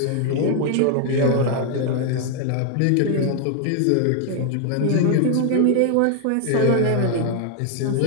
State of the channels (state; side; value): different; both; correlation 0.00